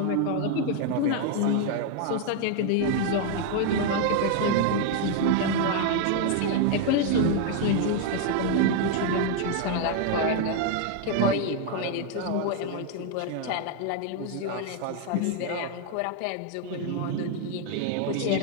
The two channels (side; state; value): both; different; correlation 0.00